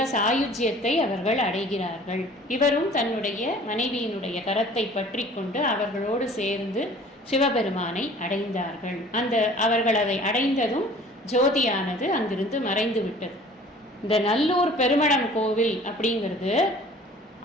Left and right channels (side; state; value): both; normal; correlation 0.49